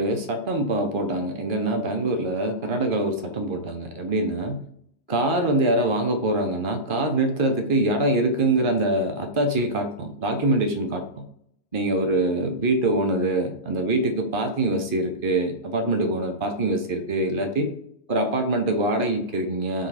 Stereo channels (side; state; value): right; late; 2.4 ms